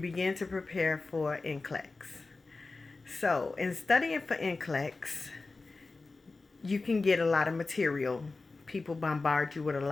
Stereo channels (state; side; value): quieter; right; 3.7 dB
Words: to prepare for NCLEX. So, in studying for NCLEX, you can get a lot of material. People bombard you with a